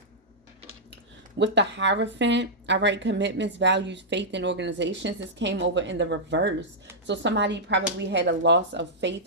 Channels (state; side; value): normal; both; correlation -0.09